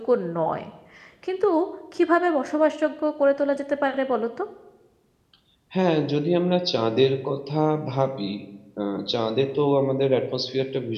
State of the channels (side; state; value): both; identical; correlation 1.00